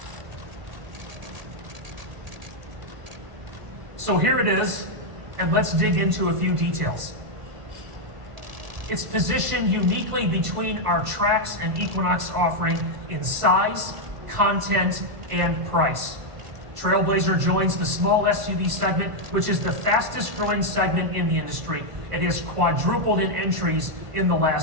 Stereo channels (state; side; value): late; left; 1.5 ms